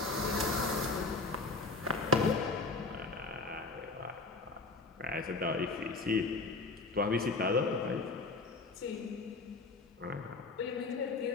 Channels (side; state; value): right; quieter; 3.6 dB